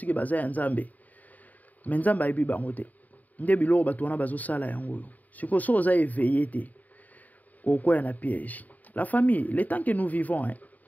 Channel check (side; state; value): right; late; 0.077 ms